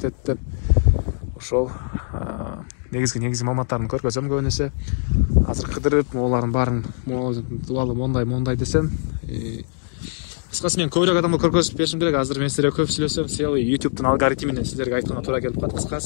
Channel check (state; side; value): silent; right; digital silence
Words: деп. Ошол негизги маалыматтарын көргөзөм көбүнесе. Азыр кыдырып, олардын баарын тууралуу мондай десем, кыскасы мен көбүрөөк адамга көргөзүп беришим керек. Азыр мен силерге көп сүйлөсөм, YouTube'дун алгоритминен силерге айтканга туура келип калат.